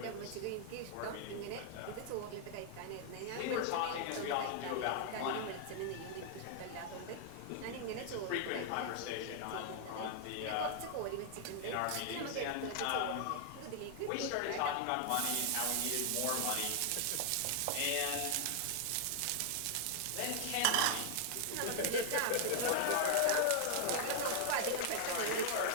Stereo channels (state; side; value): different; both; correlation 0.00